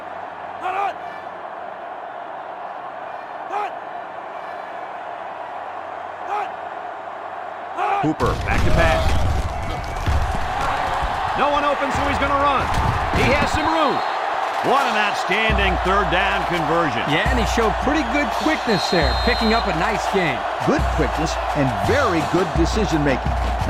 Cooper, back to pass. No one open, so he's going to run. He has some room. What an outstanding third down conversion. Yeah, and he showed pretty good quickness there, picking up a nice gain. Good quickness and very good decision-making.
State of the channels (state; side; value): identical; both; correlation 1.00